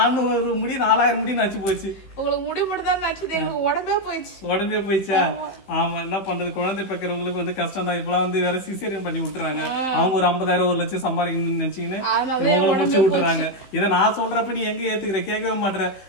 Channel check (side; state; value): right; late; 15 ms